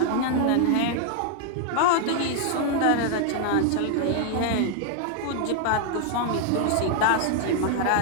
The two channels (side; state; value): both; different; correlation 0.00